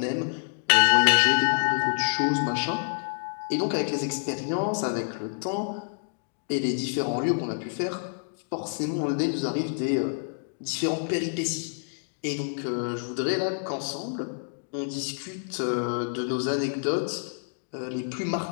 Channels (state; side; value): silent; right; digital silence